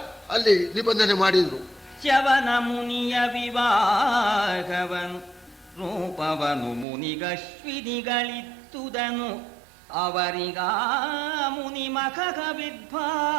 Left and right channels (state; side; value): drops out; left; at 6.9 s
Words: ಅಲ್ಲಿ ನಿಬಂಧನೆ ಮಾಡಿದರು. ಶ್ರವಣ ಮುನಿಯ ವಿವಾಹವನು ರೂಪವನು ಮುನಿಗಶ್ವಿನಿಗಳಿತ್ತುದನು, ಅವರಿಗ ಮುನಿ ಮಖ